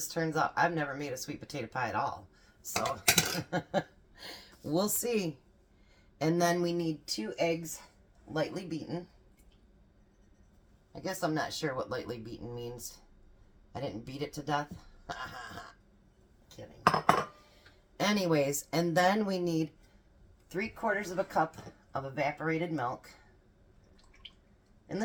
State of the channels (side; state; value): both; identical; correlation 1.00